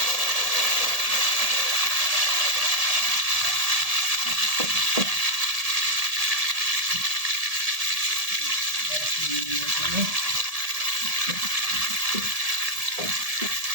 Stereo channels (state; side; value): late; left; 1.7 ms